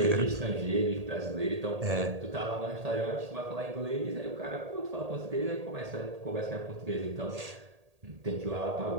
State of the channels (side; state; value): left; late; 1.8 ms